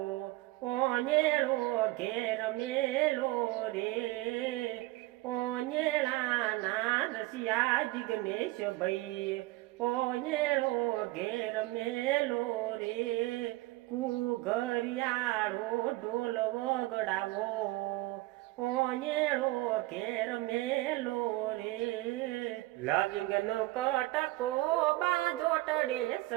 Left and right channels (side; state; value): left; quieter; 19.6 dB